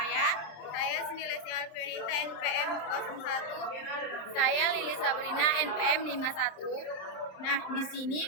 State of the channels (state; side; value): late; right; 27 ms